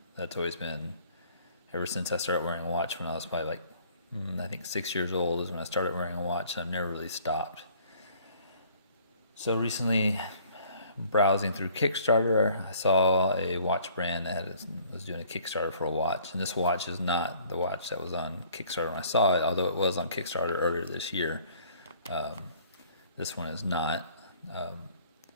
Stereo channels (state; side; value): inverted; both; correlation -0.57